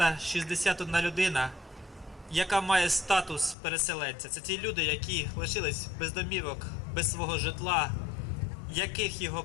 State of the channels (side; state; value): right; drops out; at 3.6 s